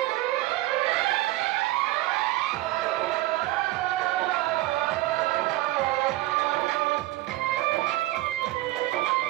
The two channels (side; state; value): left; quieter; 17.5 dB